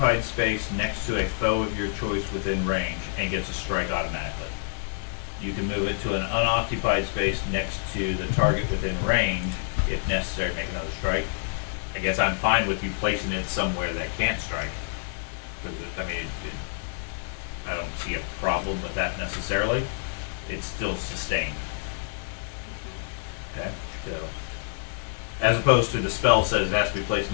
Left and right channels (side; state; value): right; silent; 60 dB below the other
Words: space next to a foe of your choice within range and gets a strike automatically. You can move it to an unoccupied space next to the target within range, if necessary, make another strike. I guess I'm fine with you placing it somewhere that can't strike. I don't see a problem with that necessarily. It's still sustained. Okay, so as opposed to the spell says it has to be placed